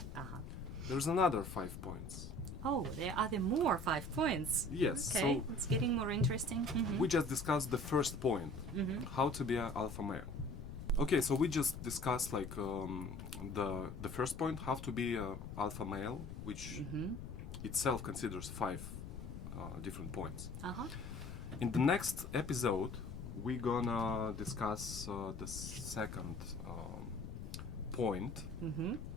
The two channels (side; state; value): left; noise; rumble, 9 dB below the sound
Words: there's another 5 points. Oh, are there more 5 points? Yes. Okay, So it's getting more interesting. we just discussed the first point, how to be an alpha male. Okay, so we just discussed like the first point, how to be an alpha male, which itself considers 5 different points. In the next episode, we're gonna discuss the second point,